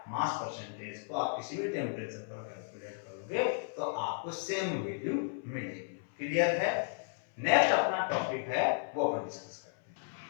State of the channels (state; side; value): silent; right; 55 dB below the other